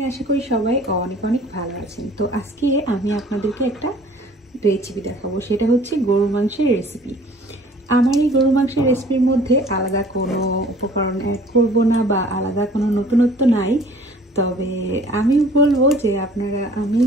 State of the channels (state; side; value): normal; both; correlation 0.52